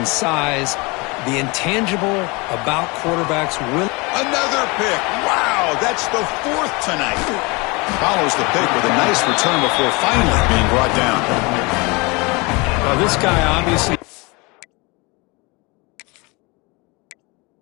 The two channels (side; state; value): right; quieter; 27.0 dB